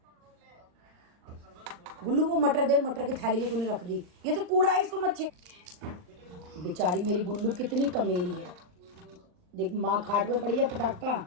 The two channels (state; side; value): late; left; 39 ms